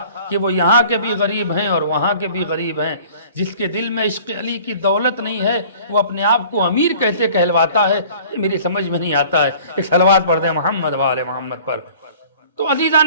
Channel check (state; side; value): inverted; both; correlation -0.48